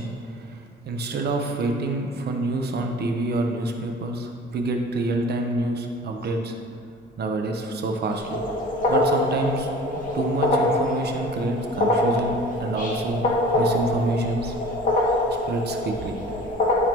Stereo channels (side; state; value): both; normal; correlation 0.43